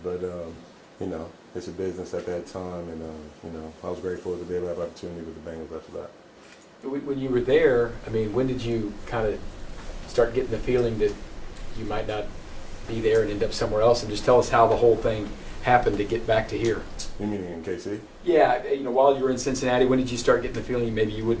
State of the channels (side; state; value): both; identical; correlation 1.00